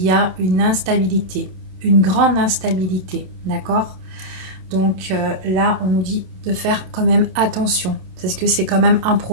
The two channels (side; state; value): left; late; 27 ms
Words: y a une instabilité, une grande instabilité, d'accord? Donc, là, on nous dit de faire quand même attention, parce que c'est quand même un